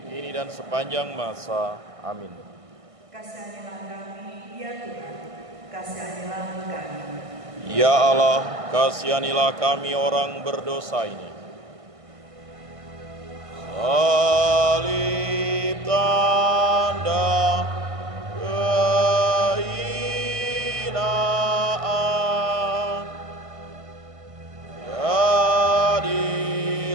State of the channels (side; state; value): left; late; 1.5 ms